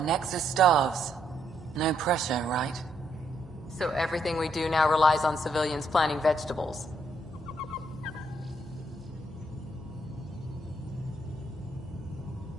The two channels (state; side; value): normal; both; correlation 0.74